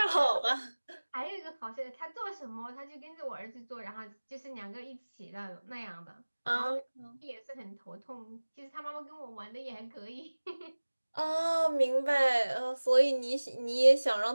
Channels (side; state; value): both; inverted; correlation -1.00